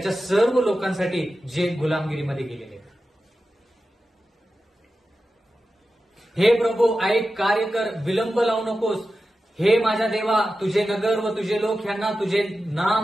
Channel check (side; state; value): both; normal; correlation 0.93